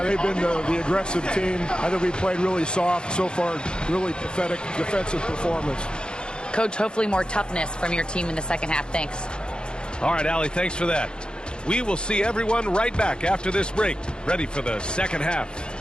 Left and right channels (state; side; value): late; right; 0.050 ms